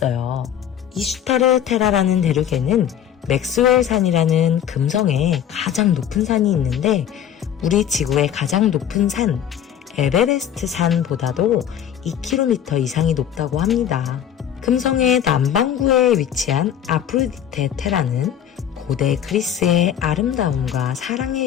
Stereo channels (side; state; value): right; quieter; 9.5 dB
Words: 이슈타르 테라라는 대륙에는 맥스웰 산이라는 금성의 가장 높은 산이 있는데 우리 지구의 가장 높은 산 에베레스트 산보다도 2km 이상이 높다고 합니다. 금성의 남반구에 위치한 아프로디테 테라는 고대 그리스의 아름다움과